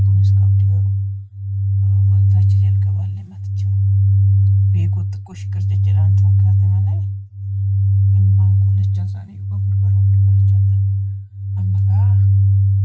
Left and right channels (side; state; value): both; identical; correlation 1.00